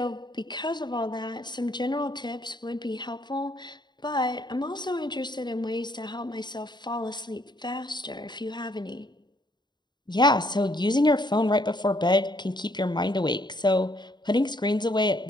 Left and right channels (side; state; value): right; late; 0.21 ms